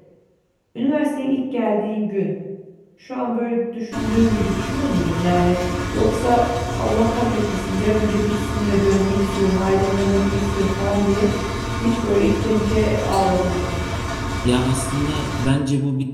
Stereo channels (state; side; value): identical; both; correlation 1.00